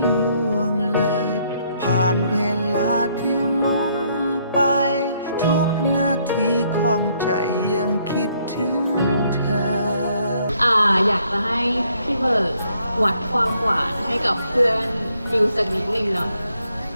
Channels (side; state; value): both; inverted; correlation -0.70